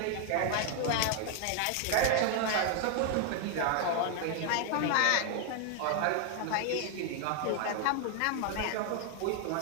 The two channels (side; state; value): both; different; correlation 0.00